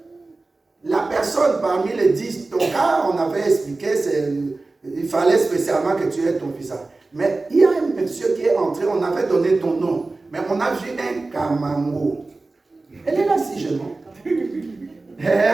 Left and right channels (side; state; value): left; quieter; 3.4 dB